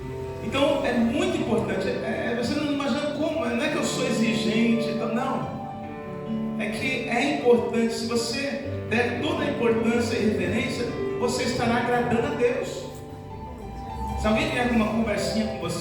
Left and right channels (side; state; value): both; identical; correlation 1.00